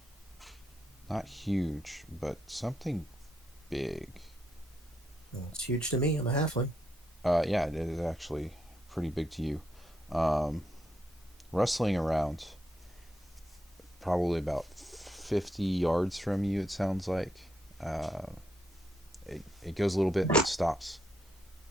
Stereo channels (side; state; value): both; normal; correlation 0.80